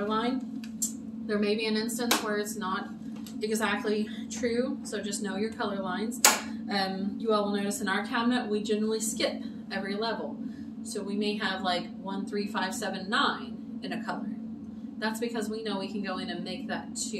line. There may be an instance where it's not exactly true, so just know your color lines. You all will notice in our cabinet, we generally skip every level. So we may have like 1, 3, 5, 7, 9 in a color. That's because we know we can go in and make that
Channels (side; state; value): both; identical; correlation 1.00